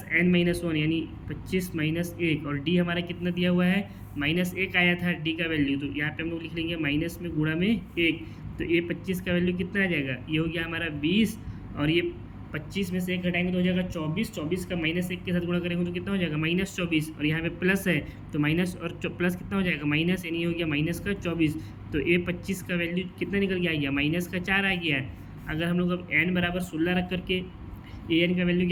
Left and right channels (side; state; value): both; identical; correlation 1.00